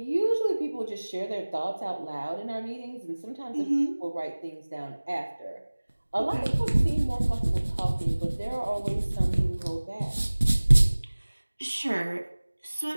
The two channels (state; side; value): inverted; both; correlation -1.00